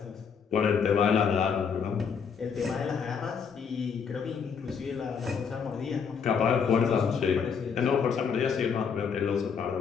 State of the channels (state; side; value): quieter; right; 6.5 dB